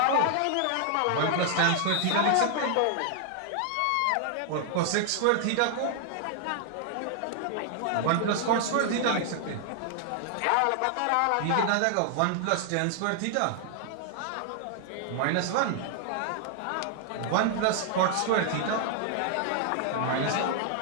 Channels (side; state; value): both; different; correlation 0.00